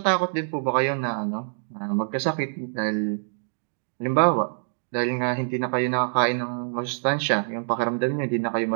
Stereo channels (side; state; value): left; silent; digital silence